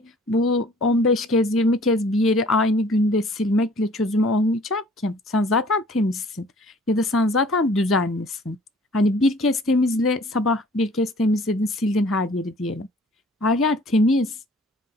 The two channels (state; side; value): normal; both; correlation 0.53